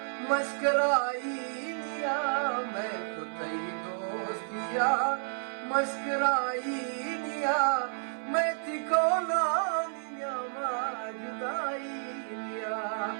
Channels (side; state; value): left; silent; 56 dB below the other